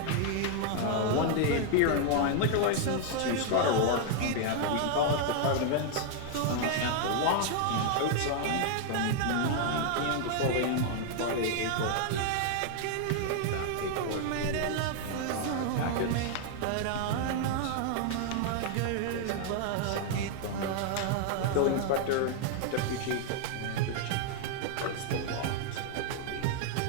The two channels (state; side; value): different; both; correlation 0.00